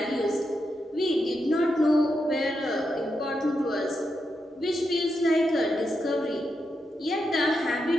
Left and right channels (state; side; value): normal; both; correlation 0.85